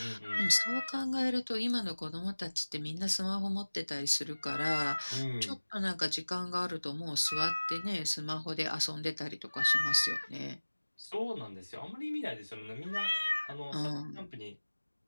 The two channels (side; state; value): both; inverted; correlation -1.00